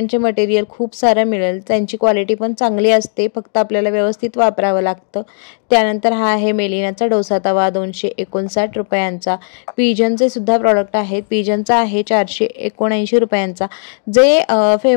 मटेरियल खूप सारं मिळेल, त्यांची क्वालिटी पण चांगली असते, फक्त आपल्याला व्यवस्थित वापरावं लागतं. त्यानंतर हा आहे मेलिनाचा डोसा तवा, 259 रुपयांचा. पिजनचे सुद्धा प्रॉडक्ट आहेत. पिजनचा आहे 479 रुपयांचा. जे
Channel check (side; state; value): right; silent; digital silence